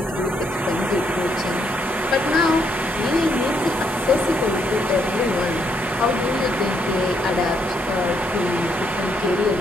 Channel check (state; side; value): normal; both; correlation 0.74